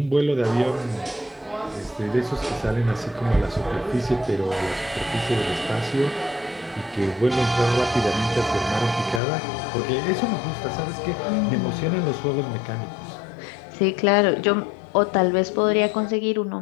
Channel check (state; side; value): drops out; right; at 9.2 s